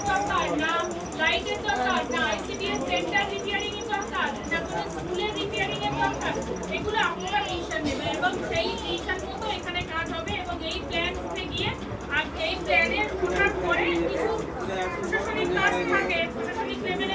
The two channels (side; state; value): both; identical; correlation 1.00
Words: দরকার না, লাইটের দরকার না, আইসিডিএস সেন্টার রিপেয়ারিং এর দরকার না, কোনো স্কুলের রিপেয়ারিং এর দরকার, এগুলো আপনারা রেজিস্ট্রেশন নেবেন এবং সেই রেজিস্ট্রেশন মতো এখানে কাজ হবে। এবং এই প্ল্যান উঠে গিয়ে আর এই প্ল্যানের ওঠার পরে কিছু প্রশাসনিক কাজ থাকে, প্রশাসনিক